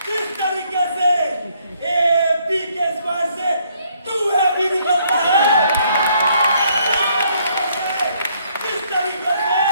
इस तरीके से एपी के स्वाद से तू है भी निकलता है। इस तरीके से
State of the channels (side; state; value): both; inverted; correlation -0.68